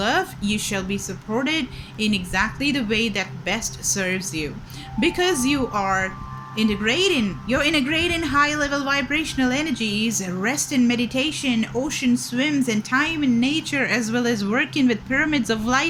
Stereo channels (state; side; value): identical; both; correlation 1.00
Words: You shall be supported in exactly the way that best serves you, because you're integrating high level vibrational energies. Rest in meditation, ocean swims, and time in nature, as well as working with pyramids of